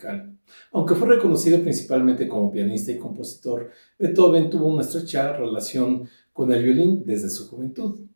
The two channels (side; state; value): both; inverted; correlation -1.00